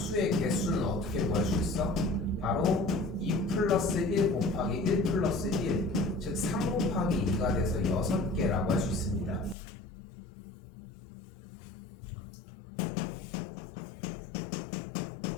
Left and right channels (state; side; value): drops out; right; at 9.6 s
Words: 개수는 어떻게 구할 수 있어? 바로 2 플러스 1 곱하기 1 플러스 1, 즉 3 곱하기 2가 돼서 6개라고 할 수 있습니다.